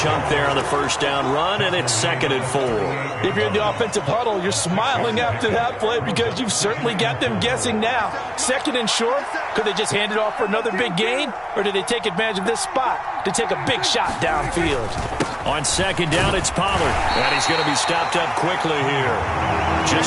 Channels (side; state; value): both; identical; correlation 1.00